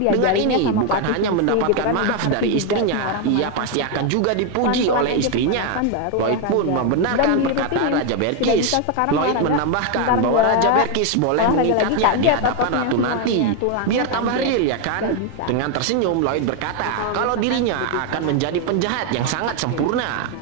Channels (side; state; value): both; different; correlation 0.01